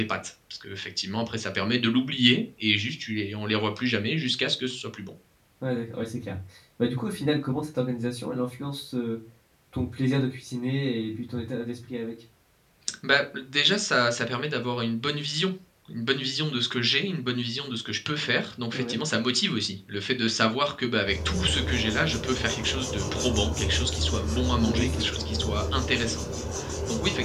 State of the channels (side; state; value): both; identical; correlation 1.00